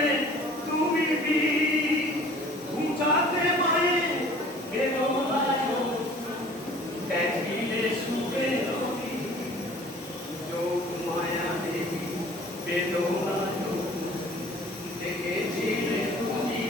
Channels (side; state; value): both; normal; correlation 0.49